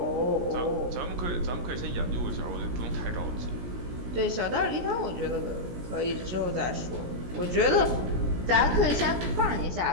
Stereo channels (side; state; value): left; late; 17 ms